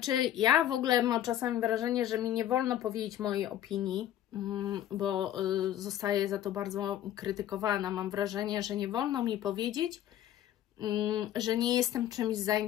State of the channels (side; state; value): right; quieter; 11.9 dB